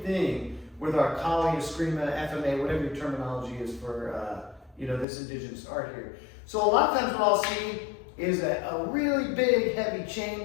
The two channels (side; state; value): right; drops out; at 5.1 s